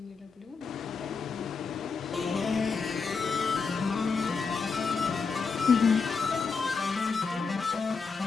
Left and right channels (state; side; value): quieter; right; 5.0 dB